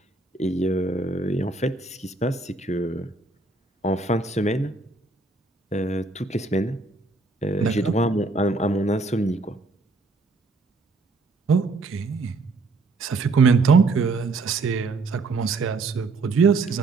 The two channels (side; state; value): left; quieter; 3.6 dB